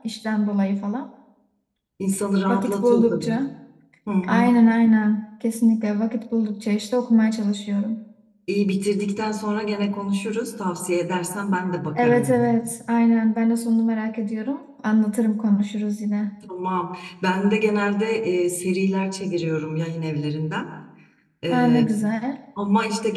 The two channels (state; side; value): identical; both; correlation 1.00